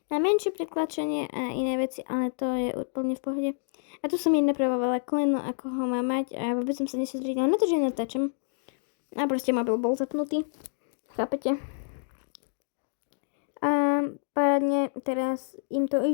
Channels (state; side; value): silent; right; digital silence